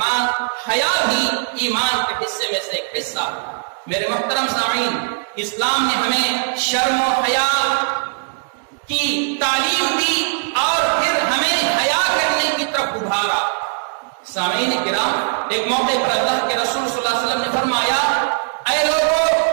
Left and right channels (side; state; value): left; silent; digital silence